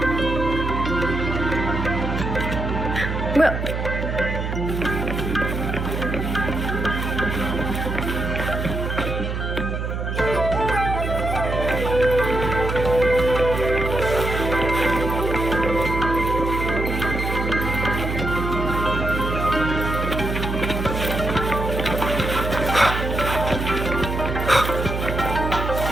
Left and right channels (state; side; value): noise; right; hum, 3 dB below the sound